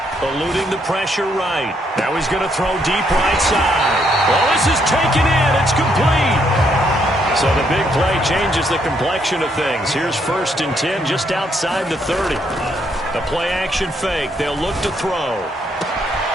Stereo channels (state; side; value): normal; both; correlation 0.73